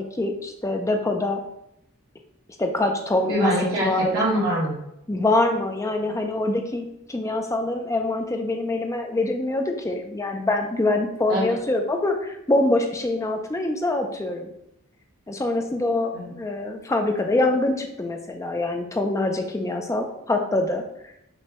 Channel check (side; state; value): both; normal; correlation 0.59